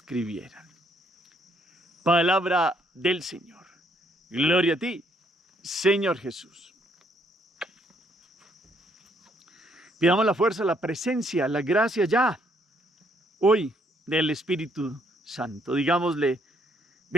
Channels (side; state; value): both; normal; correlation 0.69